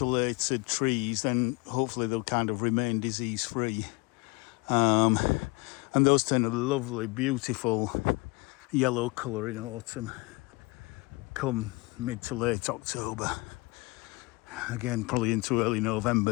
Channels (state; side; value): quieter; right; 26.1 dB